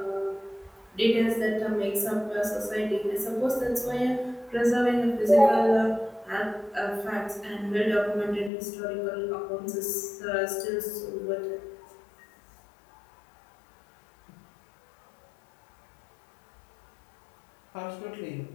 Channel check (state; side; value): drops out; right; at 8.5 s